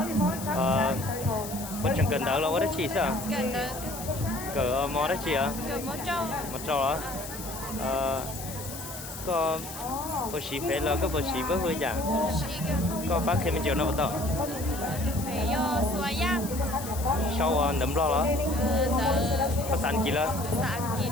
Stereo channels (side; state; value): left; noise; hiss, 11 dB below the sound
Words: Có chẳng cần đỡ đâu, có đấy chị sao? Cần được. Cỡ mò đấy chị à? Cậu mó trâu. Mò trâu đó. Có bữa xí phê là có bữa xí bữa hư chả? Có bác thêm chiều nào bắt đầu? Phải yo xóa giang. Sau nấm lo đó. Có sẵn kì là? Sẵn kì.